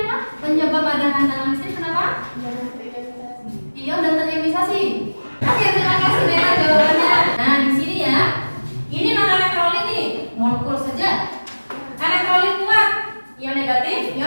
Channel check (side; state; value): both; inverted; correlation -1.00